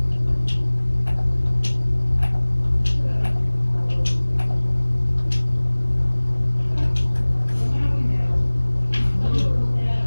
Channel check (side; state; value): both; inverted; correlation -1.00